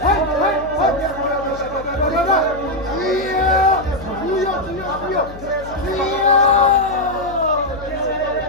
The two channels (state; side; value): noise; left; hum, 16 dB below the sound